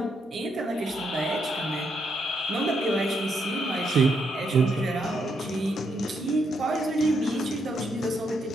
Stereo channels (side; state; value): both; normal; correlation 0.78